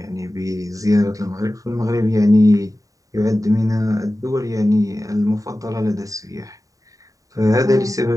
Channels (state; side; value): late; left; 0.16 ms